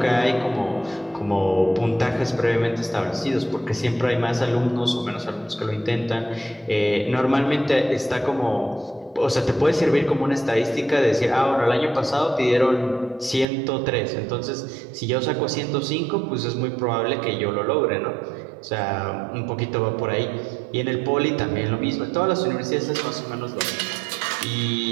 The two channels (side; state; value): left; drops out; at 13.5 s